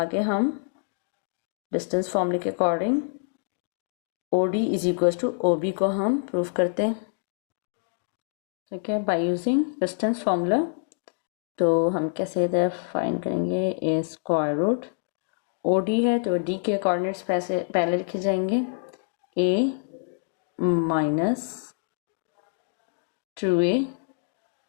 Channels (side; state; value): right; silent; digital silence